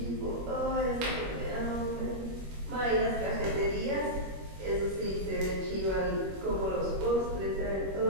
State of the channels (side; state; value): left; late; 21 ms